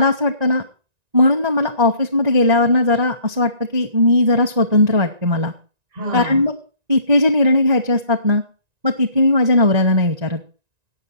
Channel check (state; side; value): late; left; 1.9 ms